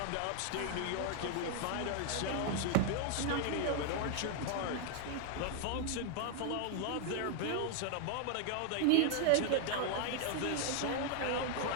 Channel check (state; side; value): different; both; correlation 0.00